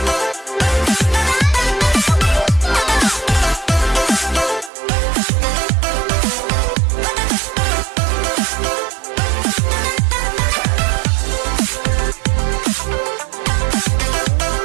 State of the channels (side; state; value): left; drops out; at 4.7 s